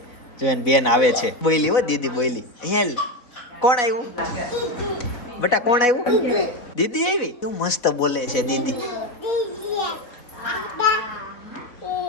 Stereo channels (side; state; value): right; late; 4.1 ms